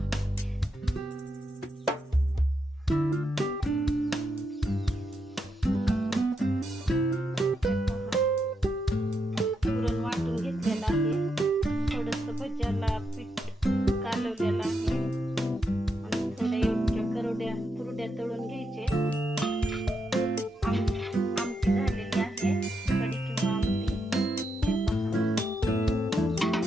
भज्याला पीठ कालवलेलं आहे आणि थोडे योग्य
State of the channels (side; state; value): both; normal; correlation 0.82